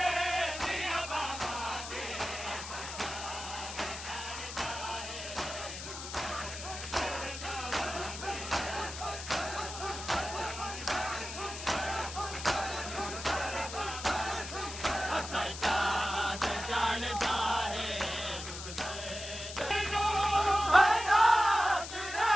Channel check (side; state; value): left; noise; hiss, 9 dB below the sound